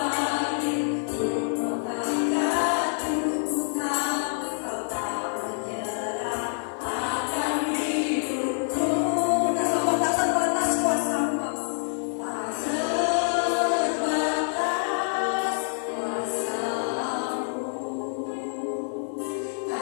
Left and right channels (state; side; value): silent; right; digital silence